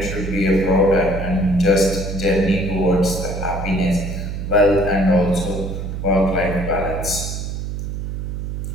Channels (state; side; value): noise; right; hum, 5 dB below the sound